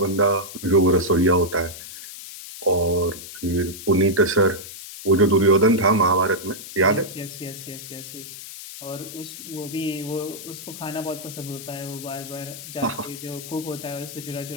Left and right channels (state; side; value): noise; left; hiss, 12 dB below the sound